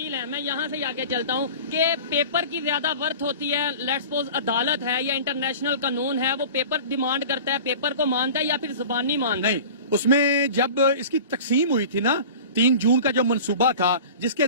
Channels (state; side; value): inverted; both; correlation -0.38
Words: ہیں, میں یہاں سے آگے چلتا ہوں کہ پیپر کی زیادہ ورتھ ہوتی ہے, لیٹس سپوز عدالت ہے یا انٹرنیشنل قانون ہے, وہ پیپر ڈیمانڈ کرتا ہے, پیپر کو مانتا ہے یا پھر زبانی مانتا ہے؟ نہیں, اس میں جب اس کی تقسیم ہوئی تھی نا 3 جون کا جو منصوبہ تھا جس کے